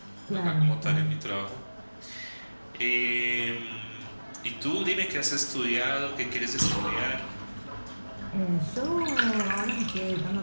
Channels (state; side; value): inverted; both; correlation -1.00